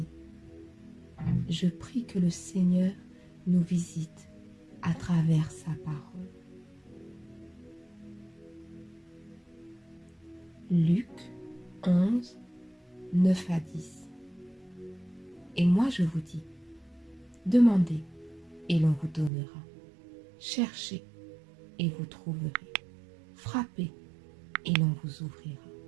Je prie que le Seigneur nous visite à travers sa parole. Luc 11, 9 à 10. Et moi je vous dis, demandez et l'on vous donnera. Cherchez et vous trouverez. Frappez et l'on vous ouvrira.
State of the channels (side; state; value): left; drops out; at 19.3 s